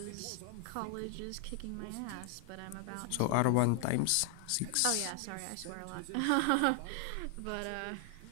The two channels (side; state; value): both; different; correlation 0.00